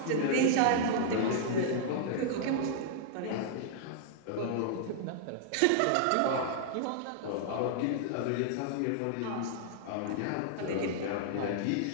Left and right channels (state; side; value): different; both; correlation -0.01